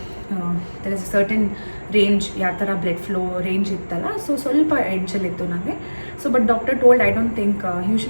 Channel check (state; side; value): inverted; both; correlation -1.00